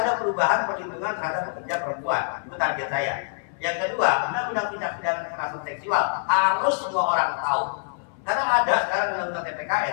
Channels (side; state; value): right; silent; 59 dB below the other